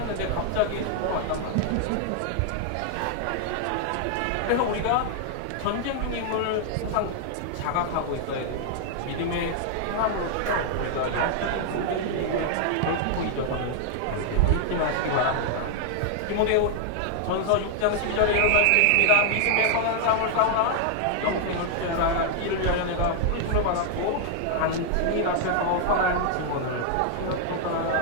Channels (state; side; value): different; both; correlation 0.00